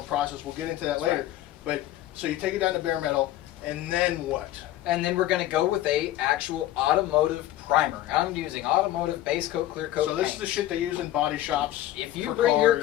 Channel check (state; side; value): quieter; right; 14.1 dB